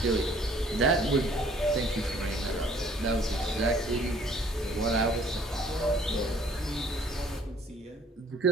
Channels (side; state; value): both; normal; correlation 0.58